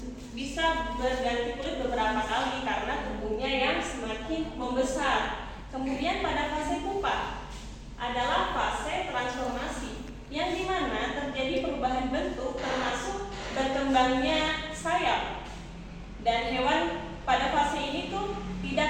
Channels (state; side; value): identical; both; correlation 1.00